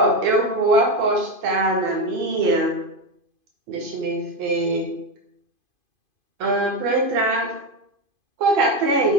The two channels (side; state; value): left; late; 2.5 ms